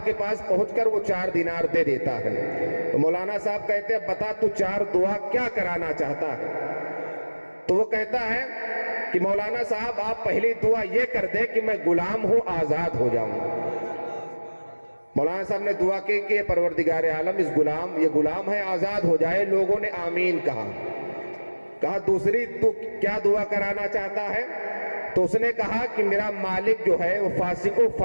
کے پاس پہنچ کر وہ 4 دینار دے دیتا ہے۔ تو مولانا صاحب کہتے ہیں بتا تو 4 دعا کیا کرانا چاہتا ہے؟ تو وہ کہتا ہے کہ مولانا صاحب آپ پہلی دعا یہ کر دیں کہ میں غلام ہوں، آزاد ہو جاؤں۔ مولانا صاحب نے دعا کی کہ پروردگار عالم یہ غلام ہے، آزاد ہو جائے۔ لوگوں نے آمین کہا۔ کہا دوسری تو کیا دعا کرانا چاہتا ہے؟ تو اس نے کہا کہ میرا مالک جو ہے وہ فاسق و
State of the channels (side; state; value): both; inverted; correlation -1.00